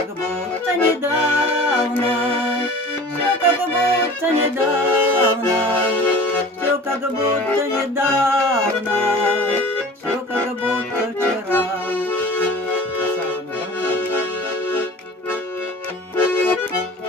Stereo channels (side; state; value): both; normal; correlation 0.42